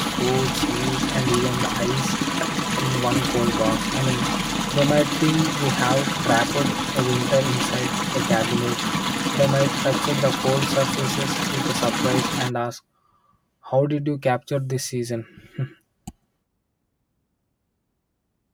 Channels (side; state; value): both; identical; correlation 1.00